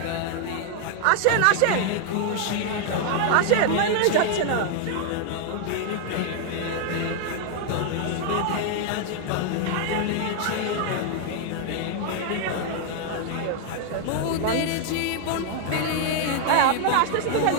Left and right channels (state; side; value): different; both; correlation 0.00